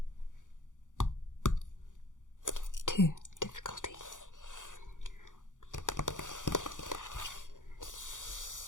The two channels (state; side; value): late; right; 0.87 ms